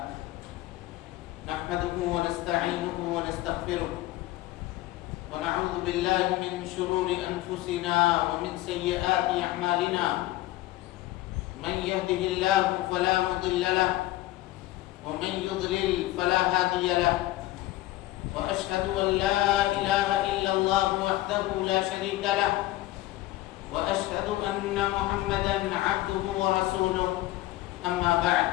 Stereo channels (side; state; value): right; quieter; 16.8 dB